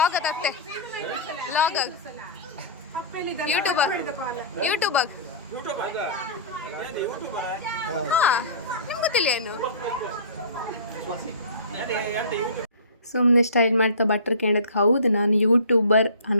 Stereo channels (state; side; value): inverted; both; correlation -0.35